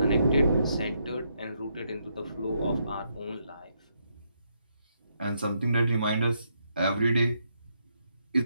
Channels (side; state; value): both; inverted; correlation -0.78